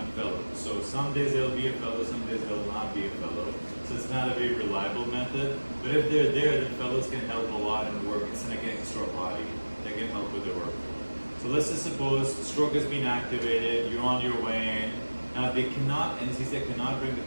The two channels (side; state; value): both; inverted; correlation -1.00